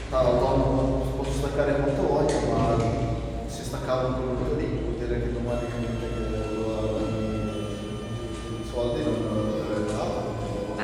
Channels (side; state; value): both; identical; correlation 1.00